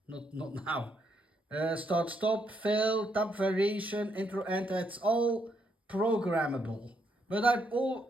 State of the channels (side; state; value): both; normal; correlation 0.76